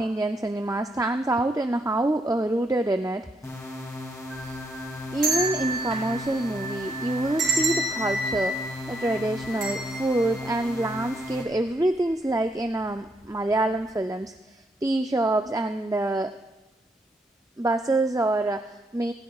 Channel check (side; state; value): both; normal; correlation 0.75